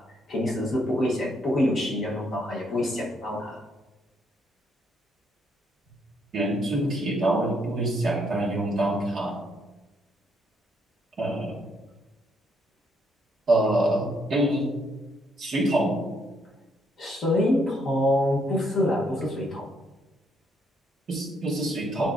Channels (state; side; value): normal; both; correlation 0.72